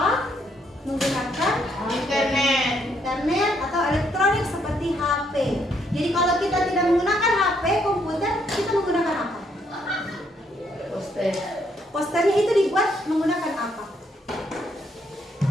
menggunakan internet atau elektronik seperti HP. Jadi kalau kita tidak menggunakan HP, komputer, kita menggunakan apa? Posternya itu dibuat menggunakan apa?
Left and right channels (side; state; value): both; normal; correlation 0.72